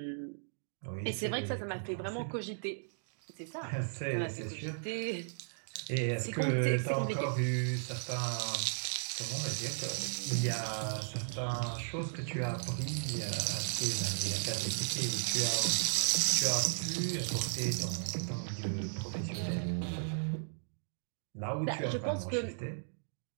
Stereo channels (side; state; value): left; silent; digital silence